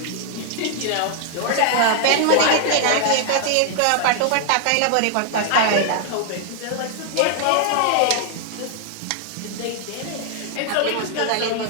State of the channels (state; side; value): different; both; correlation 0.00